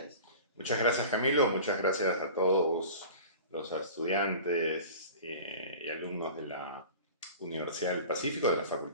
Muchas gracias, Camilo. Muchas gracias a todos los estudiantes y alumnos de la Universidad del Pacífico, de la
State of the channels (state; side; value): inverted; both; correlation -0.39